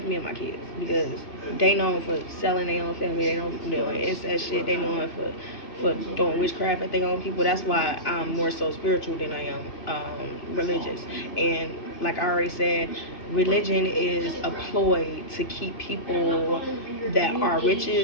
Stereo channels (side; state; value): right; late; 2.4 ms